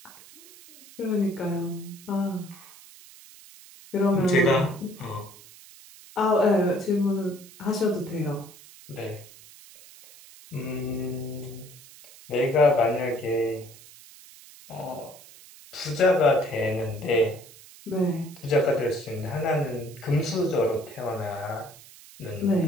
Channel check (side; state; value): right; noise; hiss, 20 dB below the sound